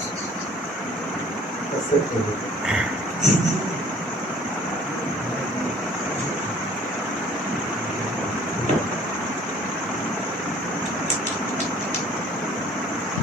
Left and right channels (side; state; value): both; normal; correlation 0.53